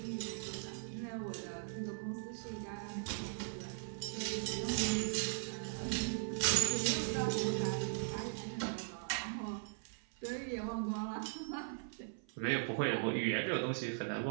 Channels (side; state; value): left; silent; 51 dB below the other